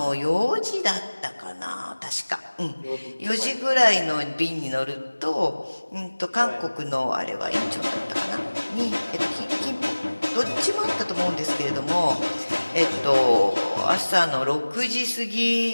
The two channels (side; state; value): both; inverted; correlation -1.00